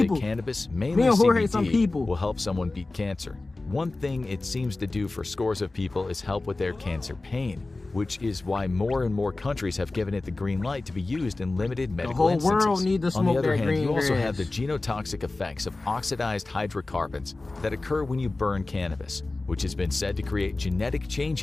cannabis, mainly CBD, will help someone beat cancer. One thing it seems to do for scores of people is help with their cancer pain, which is why more and more countries have given it the green light to be used in limited medical instances. The whole world needs to smoke. On the other hand, green you also grass. have the genotoxic effects of oxidized hydrocarbons that occur when you burn cannabis, which has been said to create genetic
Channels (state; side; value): quieter; right; 3.2 dB